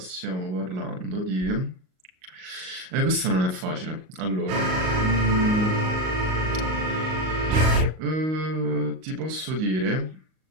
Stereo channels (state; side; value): late; left; 38 ms